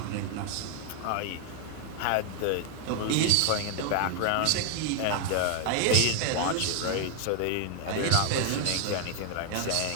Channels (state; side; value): different; both; correlation 0.00